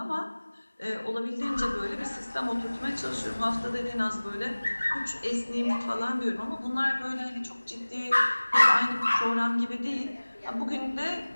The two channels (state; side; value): inverted; both; correlation -1.00